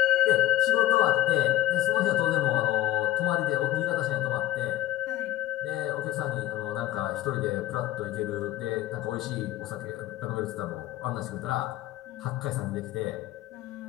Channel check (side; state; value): right; quieter; 14.0 dB